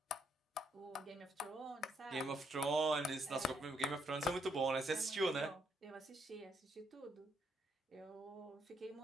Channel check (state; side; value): normal; both; correlation 0.74